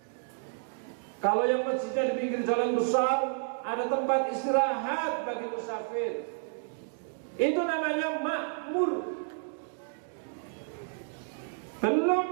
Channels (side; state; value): left; silent; 57 dB below the other